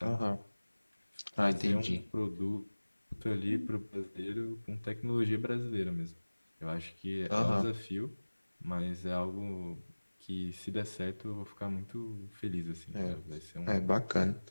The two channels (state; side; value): inverted; both; correlation -1.00